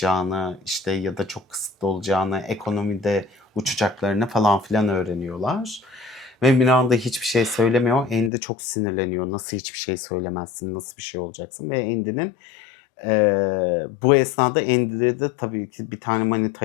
işte ya da çok kısıtlı olacağını, ekonomide uçacaklarını falan filan öğreniyorlar. Ve Miranda hiçbir şey söylemiyor. Andy çok sinirleniyor. Nasıl hiçbir şey söylemezsin, nasıl bir şey olacaksın? Ve Andy'nin bu esnada Andy'de de tabii ki bir tane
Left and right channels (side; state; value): right; drops out; at 8.3 s